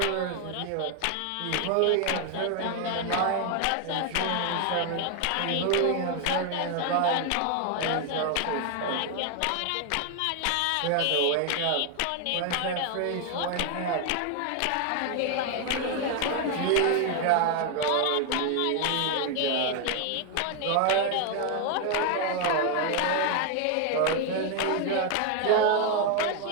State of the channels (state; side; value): different; both; correlation 0.01